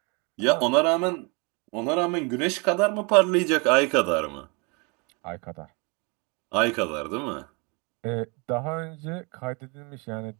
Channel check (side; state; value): left; quieter; 30.8 dB